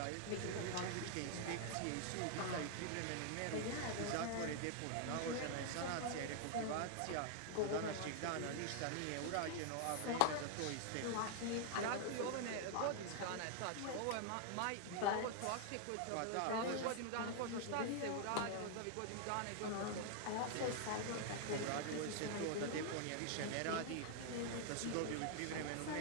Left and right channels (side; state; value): both; different; correlation 0.00